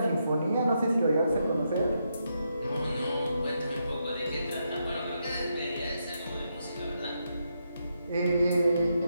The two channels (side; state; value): both; inverted; correlation -0.81